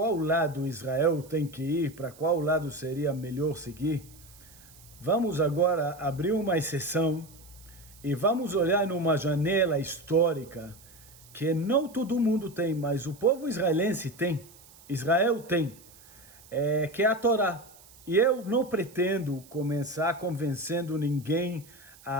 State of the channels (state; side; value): noise; right; hiss, 23 dB below the sound